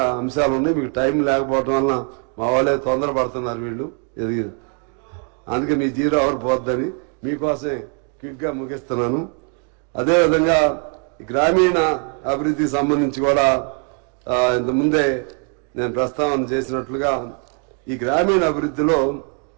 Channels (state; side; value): quieter; left; 38.6 dB